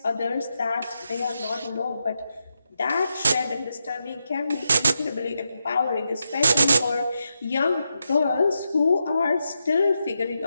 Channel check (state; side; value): inverted; both; correlation -0.86